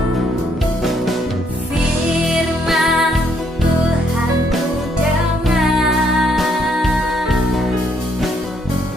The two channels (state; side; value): normal; both; correlation 0.71